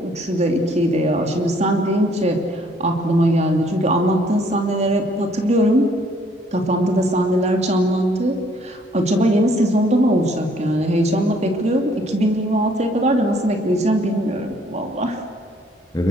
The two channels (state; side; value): normal; both; correlation 0.63